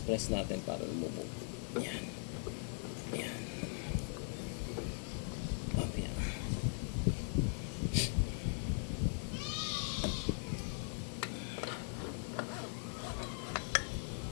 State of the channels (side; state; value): right; silent; 51 dB below the other